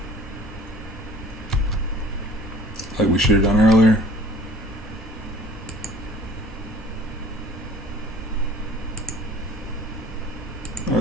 Like we should have done earlier.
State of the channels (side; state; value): both; normal; correlation 0.50